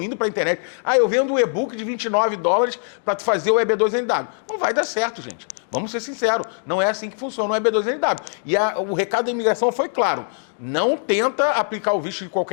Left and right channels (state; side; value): silent; right; digital silence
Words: indo para a internet. Eu vendo um e-book de $29 para fazer o EB2NW. Não vai dar certo, gente. Vamos ser sinceros, não é assim que funciona o EB2NW. E o recado da imigração foi claro, não tenta aplicar o visto de